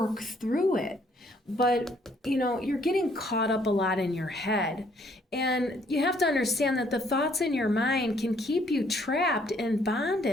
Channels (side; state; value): both; normal; correlation 0.65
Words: through it. But, you're getting caught up a lot in your head. And you have to understand that the thoughts in your mind can keep you trapped in